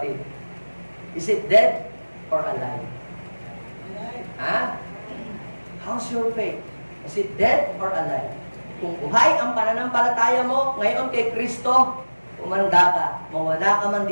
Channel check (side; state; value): both; inverted; correlation -1.00